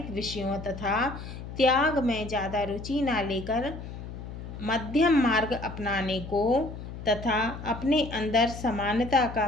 विषयों तथा त्याग में ज़्यादा रुचि न लेकर मध्यम मार्ग अपनाने को तथा अपने अंदर समानता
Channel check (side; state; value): left; noise; hum, 10 dB below the sound